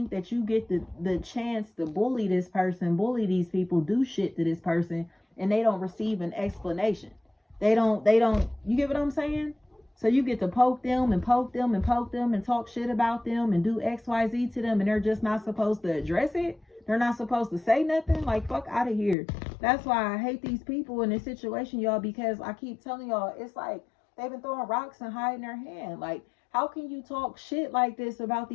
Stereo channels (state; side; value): drops out; right; at 19.2 s